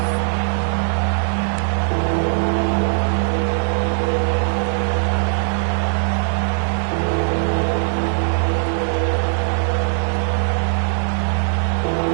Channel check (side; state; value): left; silent; digital silence